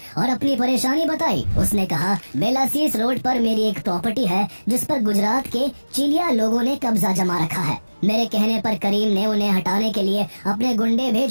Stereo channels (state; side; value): inverted; both; correlation -1.00